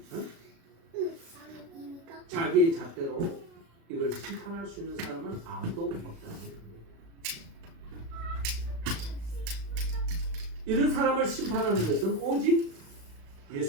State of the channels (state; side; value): late; left; 36 ms